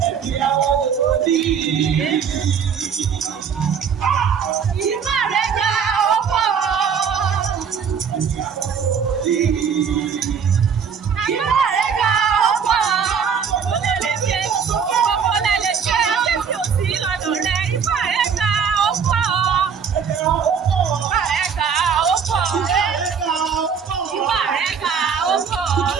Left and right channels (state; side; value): quieter; left; 6.8 dB